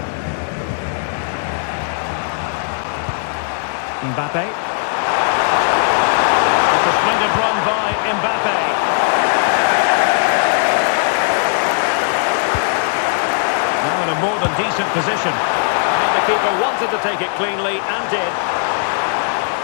Mbappe. It's a splendid run by Mbappe. Now in a more than decent position. Well, the keeper wanted to take it cleanly and did.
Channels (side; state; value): right; silent; digital silence